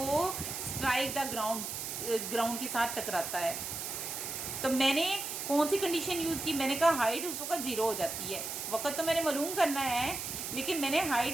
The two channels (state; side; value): noise; right; hiss, 5 dB below the sound